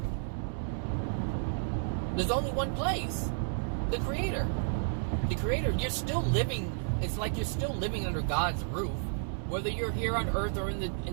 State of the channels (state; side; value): silent; left; digital silence